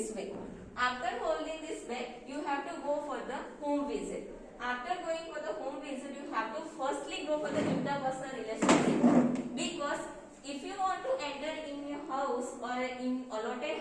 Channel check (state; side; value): identical; both; correlation 1.00